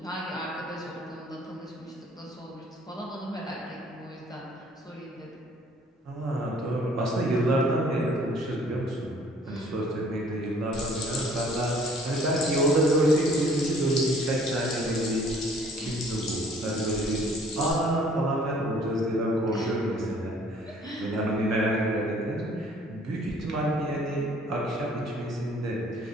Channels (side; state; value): both; normal; correlation 0.57